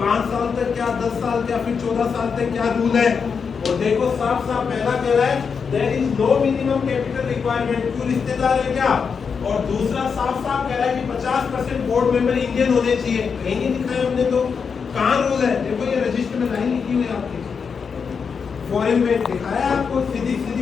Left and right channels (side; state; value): right; quieter; 5.9 dB